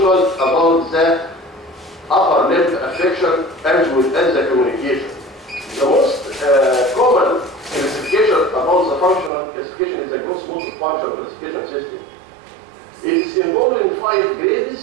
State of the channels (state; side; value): drops out; left; at 9.3 s